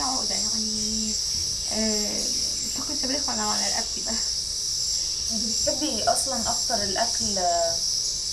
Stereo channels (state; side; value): identical; both; correlation 1.00